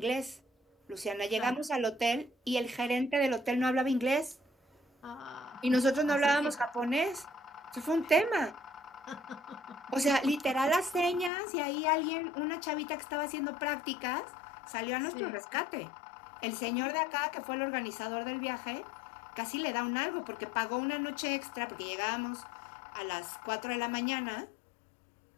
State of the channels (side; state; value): right; drops out; at 11.3 s